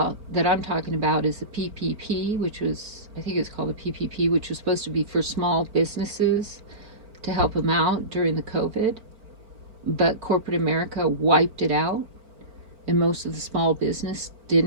that I'm talking about is the PPP, which was, I think it's called the PPP, which was supposed to be for small businesses to help them out during the COVID. But corporate America wiped it out, and most of the small business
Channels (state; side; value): late; left; 4.4 ms